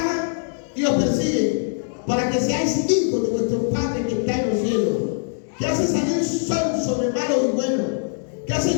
y os persiguen, para que seáis hijos de vuestro Padre que está en los cielos, que hace salir sol sobre malos y buenos, que hace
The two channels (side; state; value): right; silent; digital silence